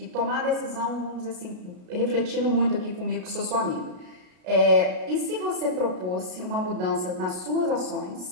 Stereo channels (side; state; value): left; late; 33 ms